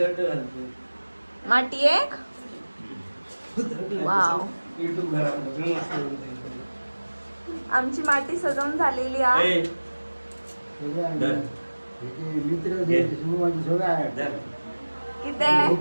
माटी एक वाव. आमची माटी सजवून झालेली आहे.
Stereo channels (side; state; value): both; inverted; correlation -1.00